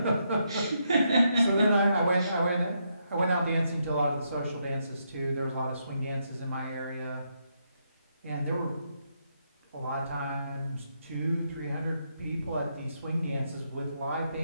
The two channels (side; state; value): both; inverted; correlation -0.79